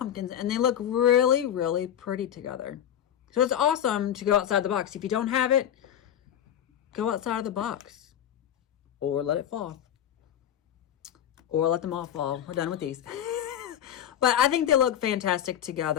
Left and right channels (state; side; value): quieter; right; 10.2 dB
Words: and they look really, really pretty together. So it's awesome to go outside the box. If you don't have it, go outside of the box or let it fall, or let them all fall. We're done with these. But I think they look fantastic